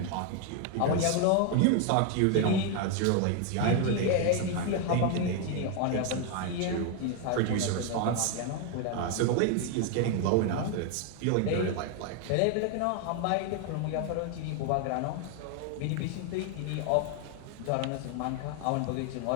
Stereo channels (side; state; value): both; different; correlation 0.01